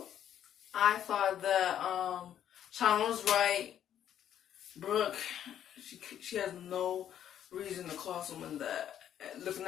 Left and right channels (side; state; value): right; quieter; 10.2 dB